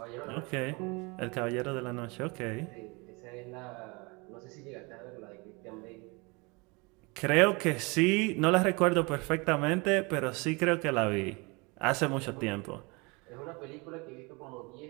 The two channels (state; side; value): quieter; left; 27.9 dB